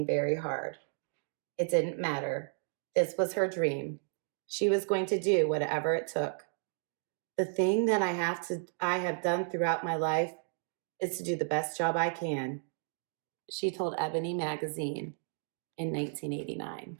very hard. It didn't matter. This was her dream. She was going to do whatever it took. The thing that I have done throughout my life is to do the best job I can, she told Ebony magazine in 1989.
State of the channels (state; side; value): silent; left; digital silence